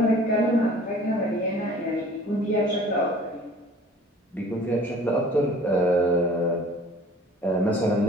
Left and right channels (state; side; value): normal; both; correlation 0.48